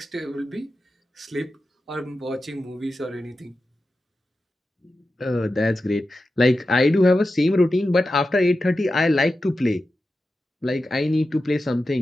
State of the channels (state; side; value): normal; both; correlation 0.92